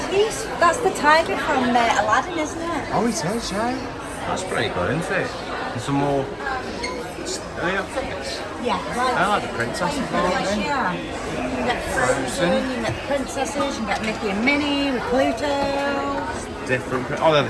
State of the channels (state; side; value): identical; both; correlation 1.00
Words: that's the tiger from Aladdin, isn't it? Oh, it is, yeah. That's pretty good, isn't it? And some more... Are they not figures? Yeah. I like the princesses, aren't they? Yeah. You can get Frozen, you can get the princesses, you can get Mickey and Minnie with Pluto. Different... Oh, they're